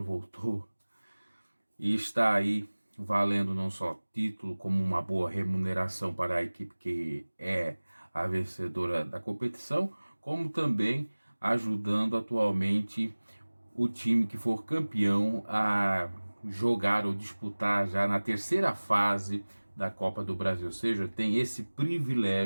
voltou. E está aí valendo não só título, como uma boa remuneração para a equipe que é a vencedora da competição, como também ajudando atualmente o time que for campeão a jogar ou disputar já na terceira fase da Copa do Brasil. Ou seja, tem esse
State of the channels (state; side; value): inverted; both; correlation -1.00